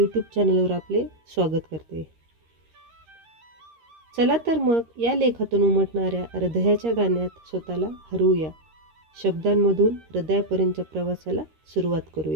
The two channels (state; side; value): late; left; 13 ms